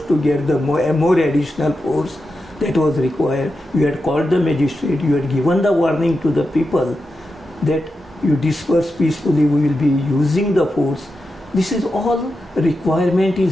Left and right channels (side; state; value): both; normal; correlation 0.89